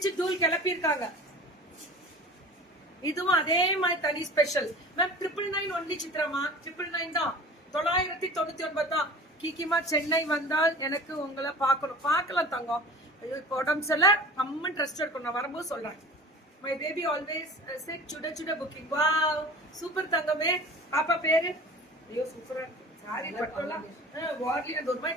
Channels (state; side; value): normal; both; correlation 0.39